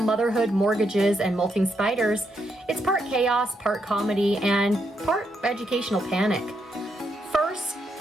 mortgages, and molting spiders. It's part chaos, part comedy, and part educational panic. First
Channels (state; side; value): normal; both; correlation 0.79